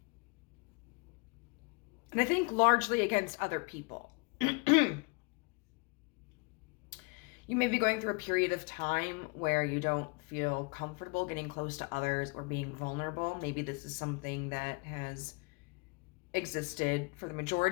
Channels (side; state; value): right; quieter; 30.6 dB